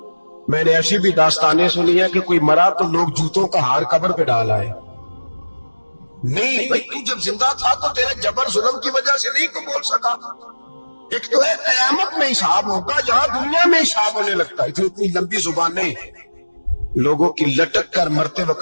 میں نے ایسی بھی داستانیں سنی ہے کہ کوئی مرا تو لوگ جوتوں کا ہار قبر پہ ڈال آئے۔ نہیں بھائی، تو جب زندہ تھا تو تیرے جبر ظلم کی وجہ سے نہیں کو بول سکا۔ ایک تو ہے قیامت میں حساب ہوگا، جہاں دنیا میں حساب ہونے لگتا ہے۔ اتنی لمبی زبانیں لوگوں کی لٹک کر مرتے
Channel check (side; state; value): both; inverted; correlation -1.00